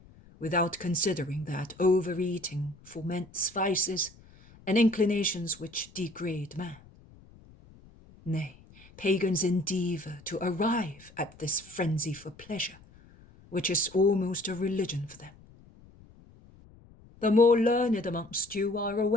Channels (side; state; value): left; noise; rumble, 24 dB below the sound